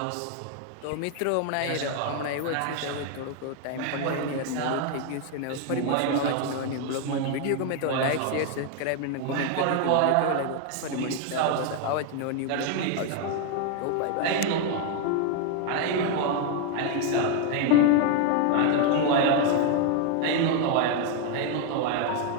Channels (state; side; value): different; both; correlation 0.01